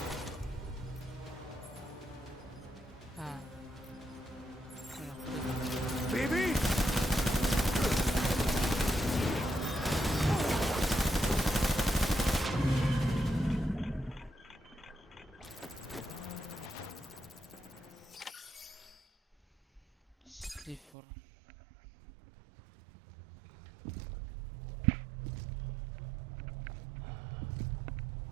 Ah, bueno, Baby! Clifford.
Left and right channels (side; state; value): left; drops out; at 20.9 s